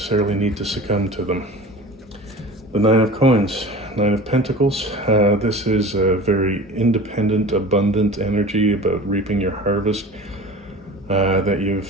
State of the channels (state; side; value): normal; both; correlation 0.38